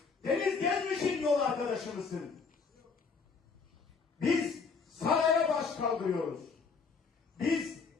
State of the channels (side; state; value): right; quieter; 5.1 dB